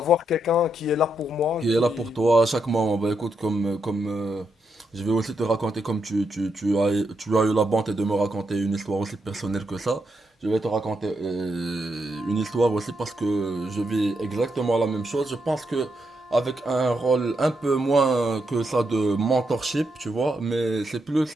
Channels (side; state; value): both; normal; correlation 0.82